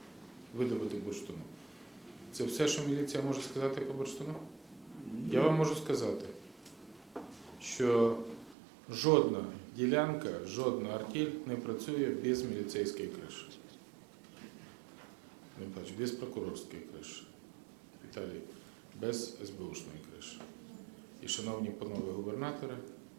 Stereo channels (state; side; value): drops out; left; at 8.6 s